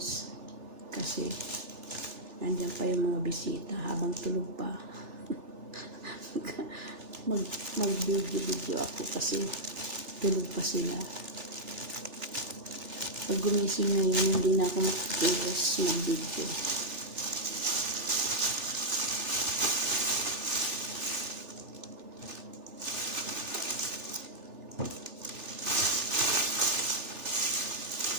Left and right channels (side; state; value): left; late; 3.4 ms